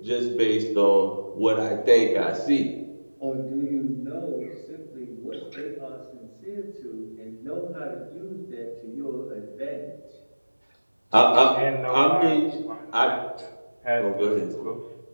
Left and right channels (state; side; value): inverted; both; correlation -1.00